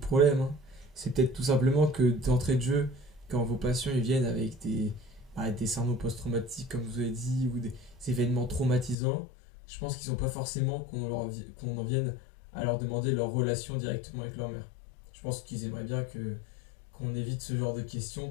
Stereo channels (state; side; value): drops out; right; at 9.0 s